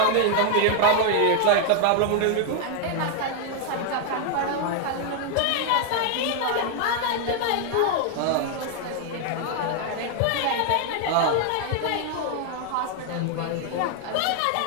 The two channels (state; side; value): different; both; correlation 0.00